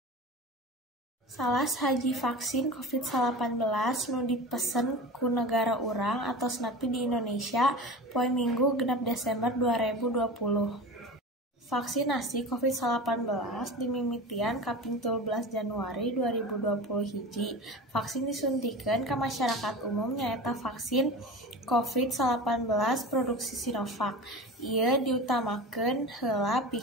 Salah saji vaksin COVID-19 nu dipesen ku negara urang atos nepi di Indonesia poe Minggu genep Desember 2020. Vaksinasi COVID-19 dimimitian kaping 13 Januari 2020 hiji. Vaksin disuntikeun ka masyarakat umum nyaeta vaksin COVID-19 produksi Sinovac. Ieu diutamakeun heula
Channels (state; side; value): normal; both; correlation 0.32